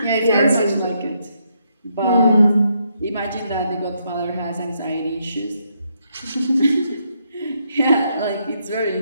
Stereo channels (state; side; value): inverted; both; correlation -0.77